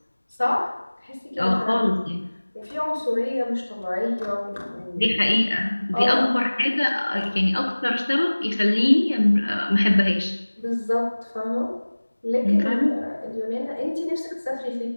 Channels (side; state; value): both; inverted; correlation -1.00